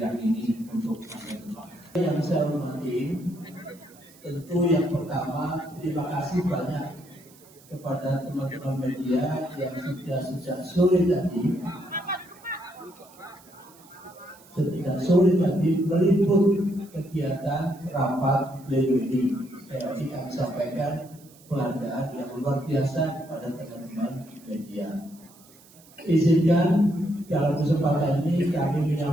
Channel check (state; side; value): noise; right; hiss, 25 dB below the sound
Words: ini untuk masa depan. Yang saya hormati, tentu yang pertama terima kasih banyak kepada teman-teman media yang sudah sejak sore tadi meliput kegiatan rapat pleno ini. Saya ingin sampaikan penghargaan yang luar biasa kepada teman-teman media. Izinkan dalam kesempatan ini kami